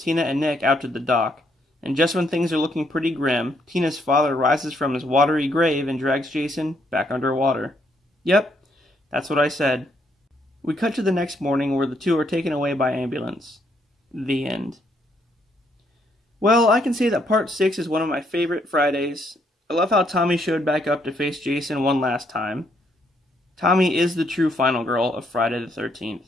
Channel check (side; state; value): both; normal; correlation 0.72